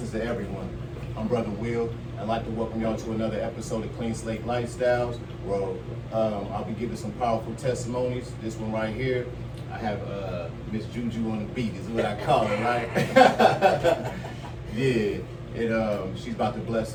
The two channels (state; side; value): identical; both; correlation 1.00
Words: to everyone. I'm Brother Will. I'd like to welcome y'all to another episode of Clean Slate Lifestyles, where I'll be giving some powerful testimonies. This one right here, I have Ms.Juju on the beat, is what I call it, right? Yeah, she's about to bless